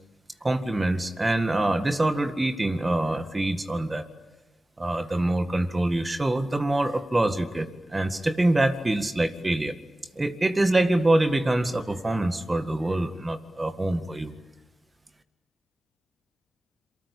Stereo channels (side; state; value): both; normal; correlation 0.97